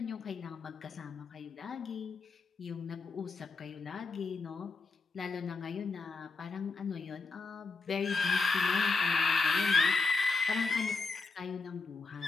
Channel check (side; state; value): right; quieter; 4.1 dB